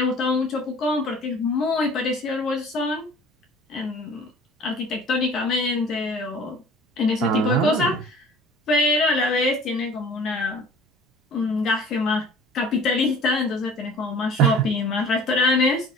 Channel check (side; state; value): both; normal; correlation 0.47